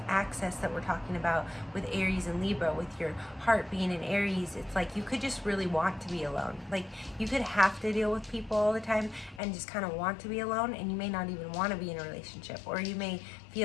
access that we're talking about with Aries and Libra. With your heart being in Aries, it's like you could just really want to be alone. Like you could have to deal with people all the time and just kind of want to be alone, and you may not even want to be in a relationship, or you may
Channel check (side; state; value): right; drops out; at 9.4 s